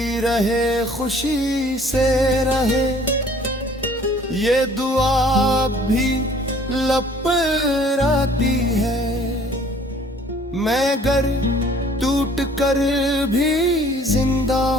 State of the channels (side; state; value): both; normal; correlation 0.55